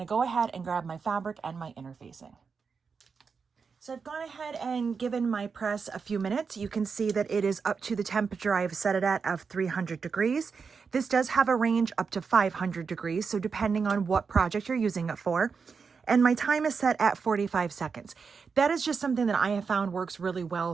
go ahead and grab my fabric and my interfacing. So I've gone ahead and given my press a few minutes. You can see that it is up to the temperature I've set it at of 300 degrees. This does have a range up to 500 degrees, so depending on what project you're using it for. And my time is set at 45 seconds. That is just something that I have found works really well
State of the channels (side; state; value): left; quieter; 5.5 dB